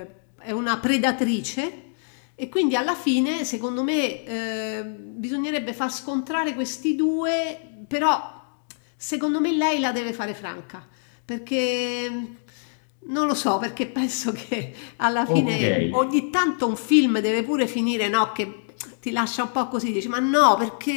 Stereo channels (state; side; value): silent; right; digital silence